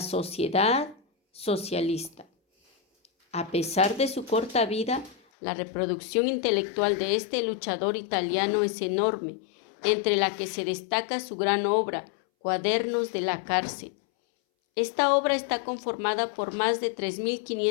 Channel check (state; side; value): drops out; right; at 5.2 s